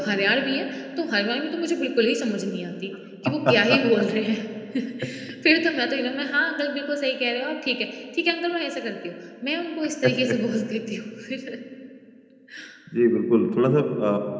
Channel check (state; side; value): identical; both; correlation 1.00